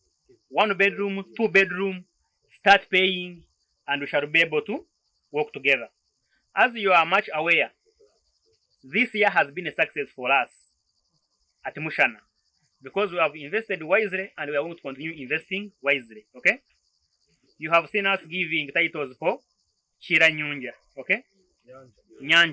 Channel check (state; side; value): identical; both; correlation 1.00